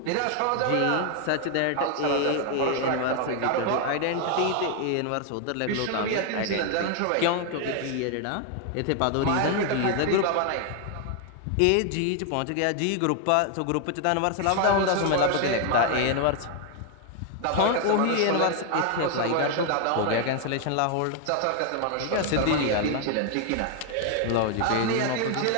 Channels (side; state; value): both; different; correlation 0.00